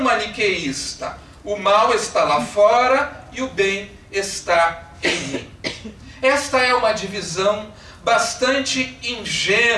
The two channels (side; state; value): both; identical; correlation 1.00